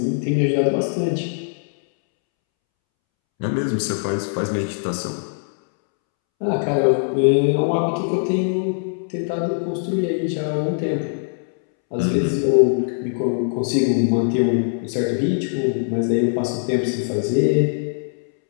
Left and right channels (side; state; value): right; silent; 65 dB below the other